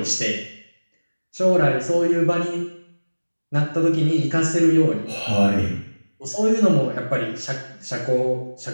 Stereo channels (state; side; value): inverted; both; correlation -1.00